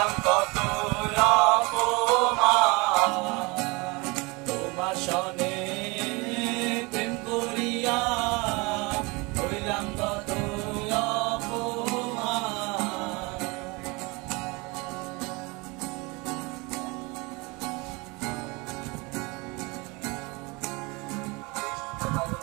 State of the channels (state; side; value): quieter; left; 26.7 dB